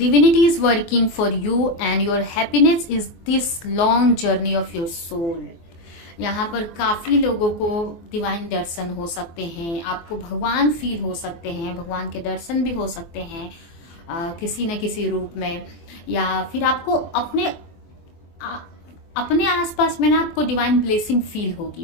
is working for you and your happiness is this long journey of your soul। यहाँ पर काफी लोगों को डिवाइन दर्शन हो सकते हैं, आपको भगवान फील हो सकते हैं, भगवान के दर्शन भी हो सकते हैं किसी न किसी रूप में, या फिर आपको अपने आसपास में ना आपको डिवाइन ब्लेसिंग फील होगी,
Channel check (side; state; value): right; late; 24 ms